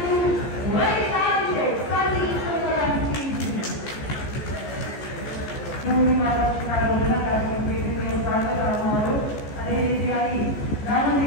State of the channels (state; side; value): late; right; 14 ms